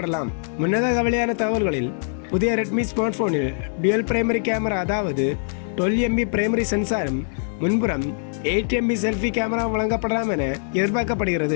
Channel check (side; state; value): right; silent; digital silence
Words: முன்னதாக வெளியான தகவல்களில் புதிய Redmi ஸ்மார்ட் போனில் டுவல் பிரைமரி கேமரா அதாவது 12MP பிரைமரி சென்சாரும் முன்புறம் 8MP செல்ஃபி கேமரா வழங்கப்படலாம் என